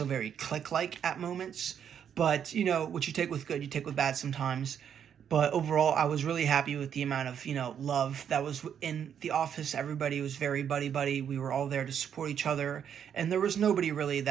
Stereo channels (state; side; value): quieter; left; 8.5 dB